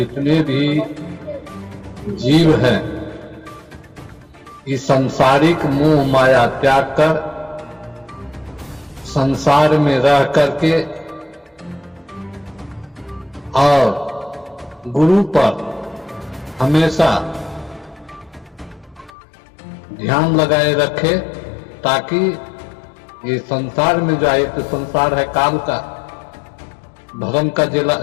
भी जीव हैं इस सांसारिक मोह माया त्याग कर संसार में रह करके और गुरु पर हमेशा ध्यान लगाए रखे, ताकि ये संसार में जो एक संसार है काल का, धर्म का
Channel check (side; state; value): right; drops out; at 19.1 s